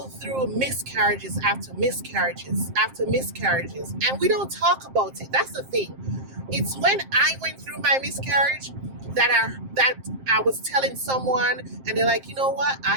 through miscarriages after miscarriages after miscarriages. And we don't talk about it. That's the thing. It's when I went through my miscarriage that I was telling someone, and they're like, you know what?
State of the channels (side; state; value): left; late; 7.6 ms